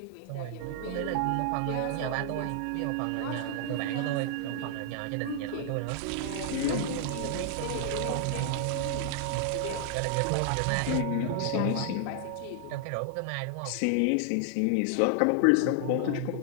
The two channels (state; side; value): different; both; correlation 0.00